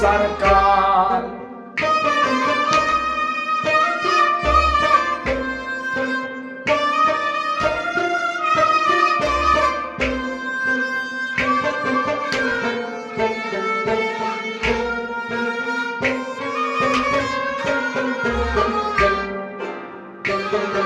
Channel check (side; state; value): both; identical; correlation 1.00